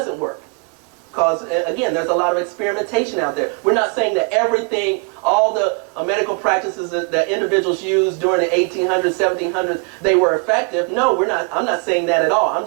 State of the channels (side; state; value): left; quieter; 34.0 dB